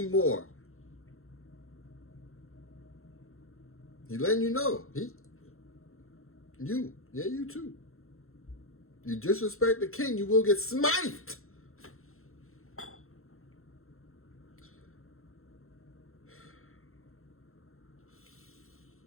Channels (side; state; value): right; late; 0.62 ms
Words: He letting you know. You too. You disrespect the king, you will get smithed.